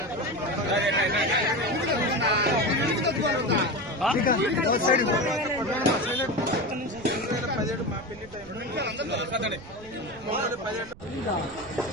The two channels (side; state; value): right; noise; rumble, 20 dB below the sound